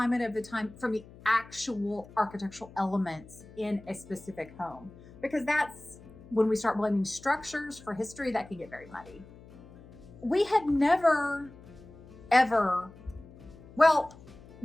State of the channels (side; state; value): left; noise; hum, 20 dB below the sound